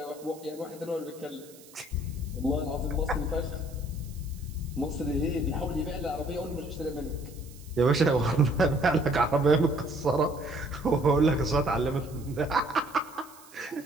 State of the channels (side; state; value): right; noise; hiss, 22 dB below the sound